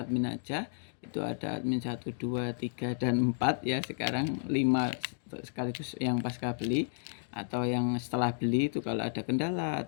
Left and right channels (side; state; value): right; silent; digital silence